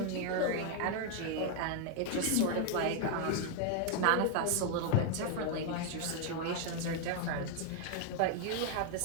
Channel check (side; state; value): both; different; correlation 0.00